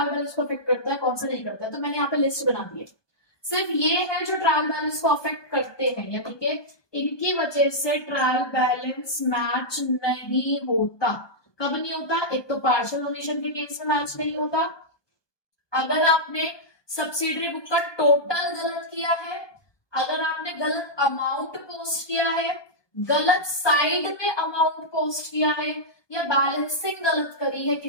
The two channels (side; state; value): right; late; 1.2 ms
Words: बैलेंस को अफेक्ट करता है, कौन सा नहीं करता है। तो मैंने यहाँ पे लिस्ट बना दी है, सिर्फ ये है जो ट्रायल बैलेंस को अफेक्ट करते हैं, यानी कि इनकी वजह से ट्रायल बैलेंस मैच नहीं होता, कब नहीं होता? एक तो पार्शियल ओमिशन के केस में मैच नहीं होता, अगर आपने सब्सिडरी बुक का टोटल गलत किया है, अगर आपने गलत अमाउंट पोस्ट किया है, गलत साइड में अमाउंट पोस्ट किया है, या बैलेंसिंग गलत करी है